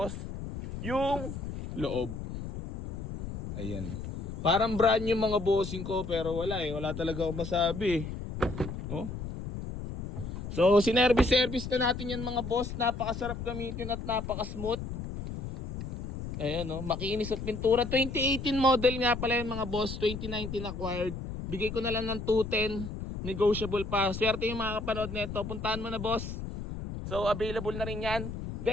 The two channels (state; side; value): noise; left; rumble, 7 dB below the sound